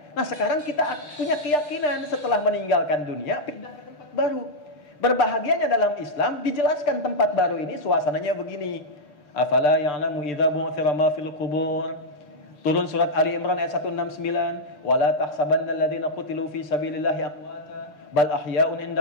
Nah sekarang kita punya keyakinan setelah meninggalkan dunia, pindah ke tempat baru. Berbahagianya dalam Islam, dijelaskan tempat baru ini suasananya begini. Afala ya'lamu idza bu'thira ma fil qubur. Turun surat Ali Imran ayat 169. Wala tahsabanna alladziina qutilu fi sabilillahi amwata bal ahya'un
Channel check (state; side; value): late; right; 6.8 ms